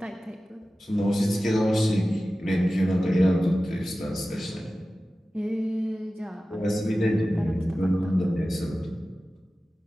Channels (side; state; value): both; normal; correlation 0.95